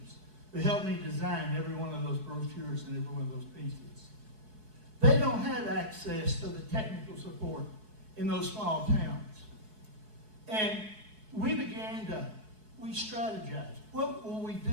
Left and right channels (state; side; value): late; left; 4.7 ms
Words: who helped me design every one of those brochures and every one of those pieces. They don't have access to the technical support in those small towns. And we strategized. What will we